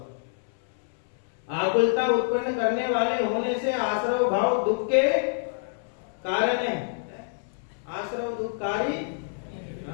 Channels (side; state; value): right; silent; 60 dB below the other